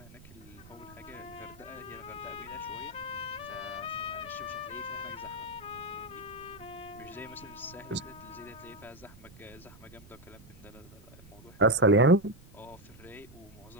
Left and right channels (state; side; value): noise; right; rumble, 20 dB below the sound